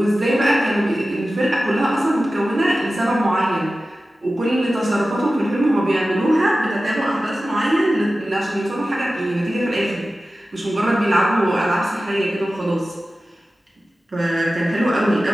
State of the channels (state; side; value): normal; both; correlation 0.95